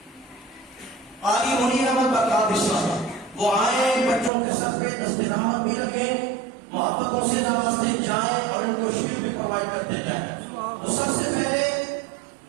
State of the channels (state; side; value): drops out; left; at 4.3 s